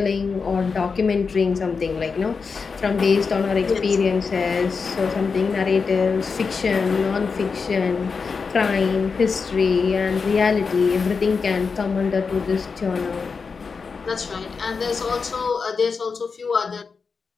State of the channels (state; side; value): quieter; right; 5.1 dB